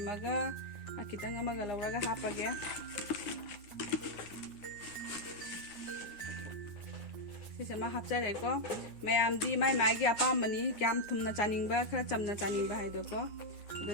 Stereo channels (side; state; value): right; late; 9.7 ms